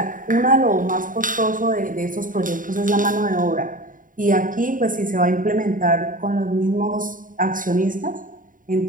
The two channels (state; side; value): late; left; 0.39 ms